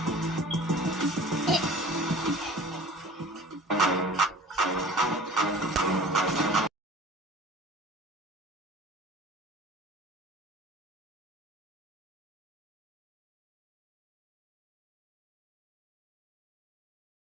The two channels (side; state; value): both; normal; correlation 0.42